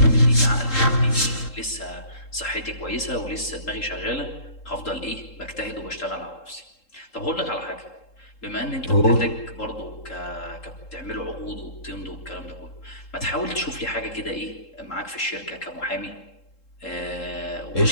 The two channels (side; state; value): right; late; 3.7 ms